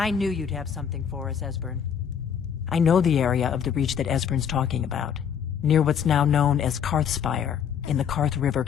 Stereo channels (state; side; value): quieter; right; 7.9 dB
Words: knew you'd have something for us, Esbern. I know the area of the Reach that Esbern's talking about, near what's now known as Karthspire, in the Karth River